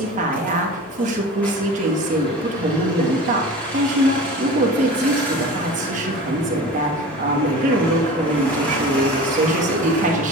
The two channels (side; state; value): both; normal; correlation 0.36